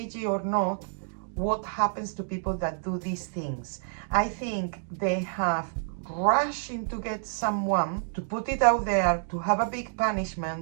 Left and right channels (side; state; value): left; silent; digital silence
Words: or not, what happens to people that do these things. I think they have rushing to get someone, to put it out there, to have a big